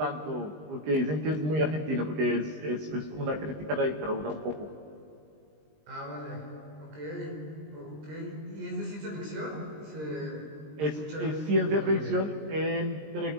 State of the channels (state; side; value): late; left; 20 ms